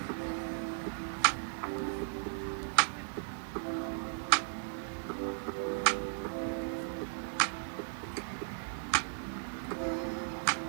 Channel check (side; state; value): left; silent; digital silence